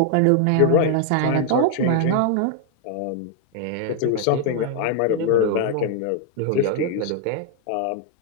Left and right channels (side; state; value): both; different; correlation 0.00